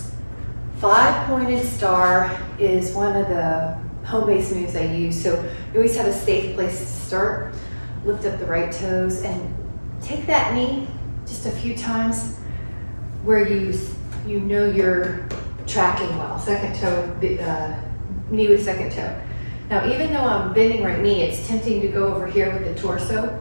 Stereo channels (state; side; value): inverted; both; correlation -1.00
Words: 5-pointed star is one of the home-based moves I use. So you always have a safe place to start. Lift up the right toes and take that knee just a few times where you know you're tracking well. Second toe, knee with second toe. Now, even though I'm bending right knee, it's tempting to go over here with the torso.